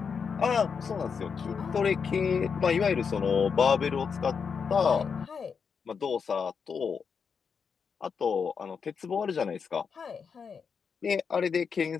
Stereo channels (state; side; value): quieter; right; 6.1 dB